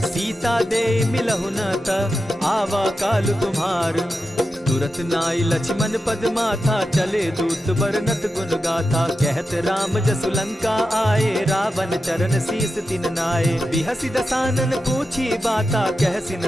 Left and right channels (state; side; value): normal; both; correlation 0.90